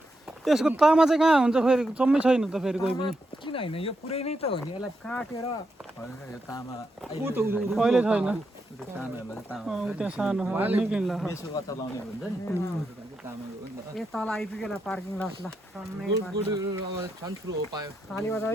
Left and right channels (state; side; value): normal; both; correlation 0.84